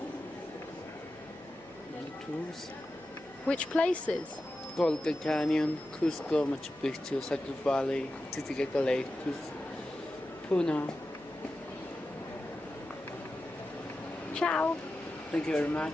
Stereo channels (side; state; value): left; noise; hum, 26 dB below the sound